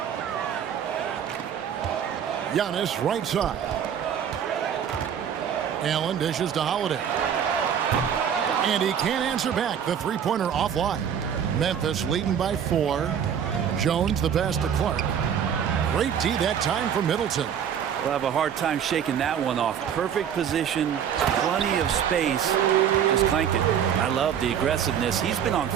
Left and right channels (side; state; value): left; quieter; 8.5 dB